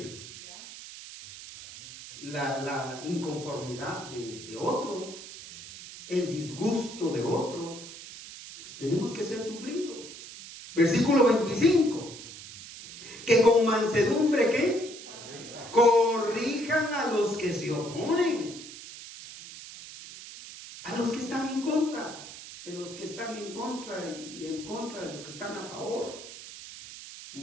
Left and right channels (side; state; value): right; noise; hiss, 14 dB below the sound